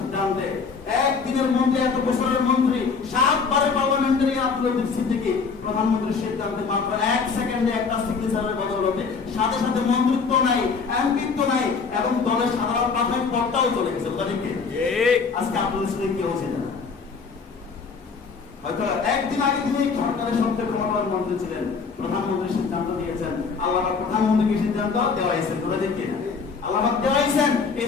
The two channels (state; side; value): quieter; right; 5.2 dB